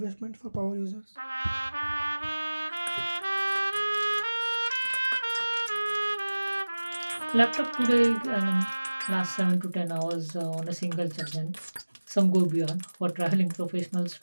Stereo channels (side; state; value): both; inverted; correlation -1.00